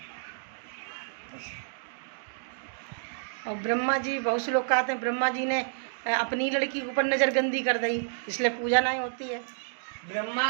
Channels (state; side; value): silent; left; digital silence